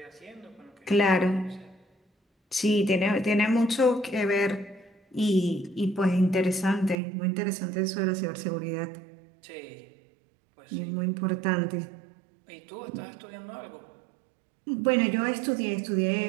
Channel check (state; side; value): drops out; left; at 7.0 s